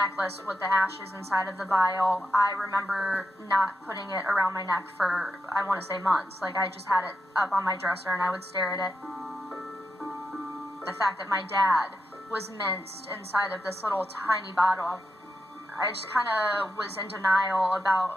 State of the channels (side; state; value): both; normal; correlation 0.86